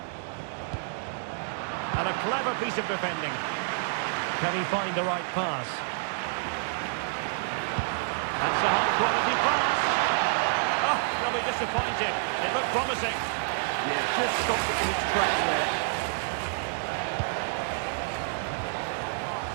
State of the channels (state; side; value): silent; left; digital silence